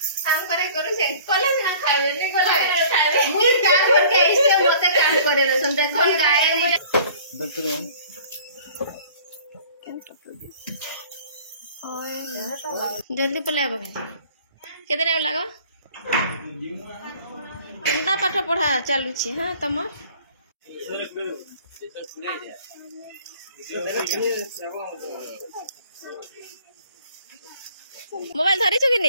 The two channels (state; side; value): inverted; both; correlation -0.50